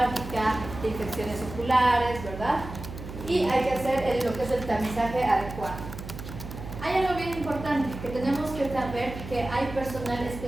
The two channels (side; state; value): right; noise; hum, 11 dB below the sound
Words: de infecciones oculares, ¿verdad? Y hay que hacer lo que es el tamizaje adecuado. Hay algo bien importante, que tenemos que saber que hay personal